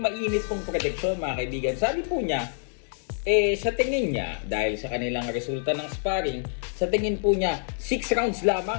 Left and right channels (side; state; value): right; silent; digital silence